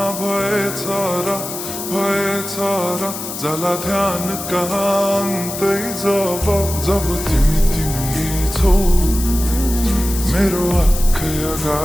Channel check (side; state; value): left; noise; hiss, 8 dB below the sound